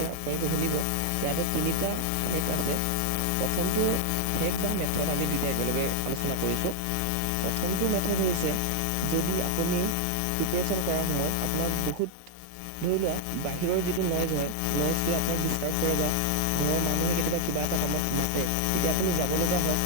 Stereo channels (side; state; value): both; different; correlation 0.00